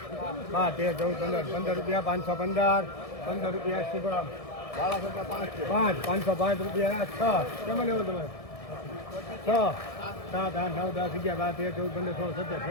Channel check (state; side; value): late; right; 1.7 ms